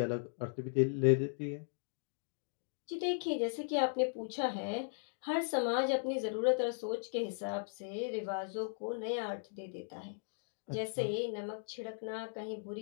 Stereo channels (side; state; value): right; silent; digital silence